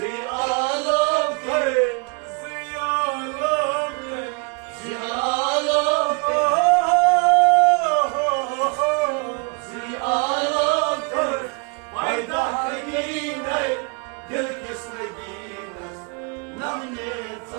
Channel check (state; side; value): quieter; left; 33.4 dB